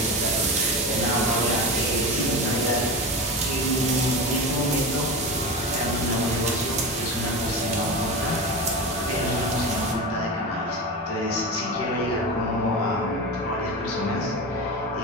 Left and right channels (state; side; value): normal; both; correlation 0.24